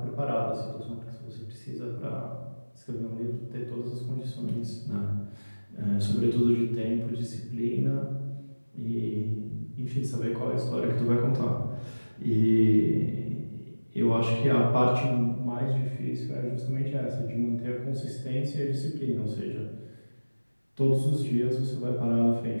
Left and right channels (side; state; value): both; inverted; correlation -1.00